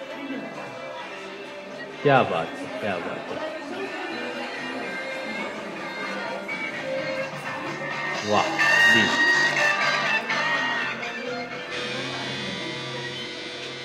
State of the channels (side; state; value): both; identical; correlation 1.00